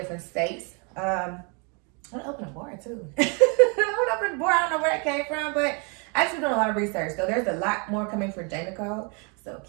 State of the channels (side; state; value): left; quieter; 34.7 dB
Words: states. I want to open a bar too. I want to open a bar. I don't know where that came from, but I just been doing a lot of research. So there's a lot more coming for J. Nicole. So